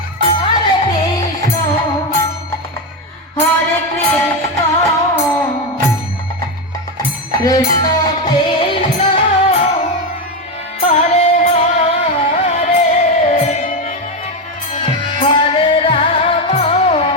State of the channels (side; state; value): both; normal; correlation 0.11